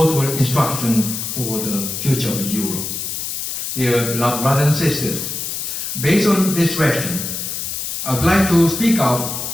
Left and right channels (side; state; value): left; noise; hiss, 4 dB below the sound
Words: instruction for the future of Europe. Dear beloved brothers and sisters, based on this direction, I would like to